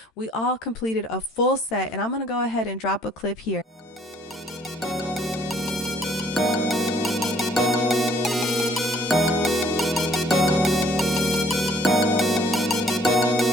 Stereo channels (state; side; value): normal; both; correlation 0.61